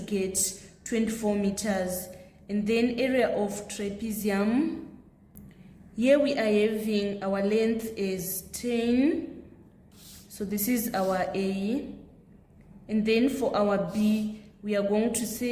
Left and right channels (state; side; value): identical; both; correlation 1.00